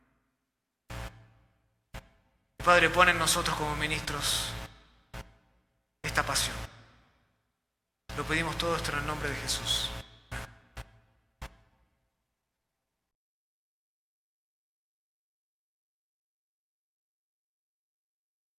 Padre, pon en nosotros como ministros esta pasión. Lo pedimos todo esto en el nombre de Jesús.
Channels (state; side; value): identical; both; correlation 1.00